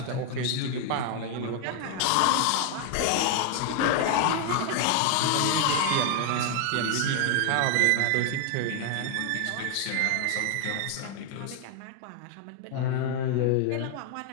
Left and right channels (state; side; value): different; both; correlation 0.00